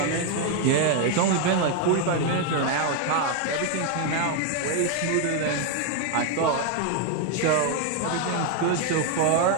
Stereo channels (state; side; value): different; both; correlation 0.01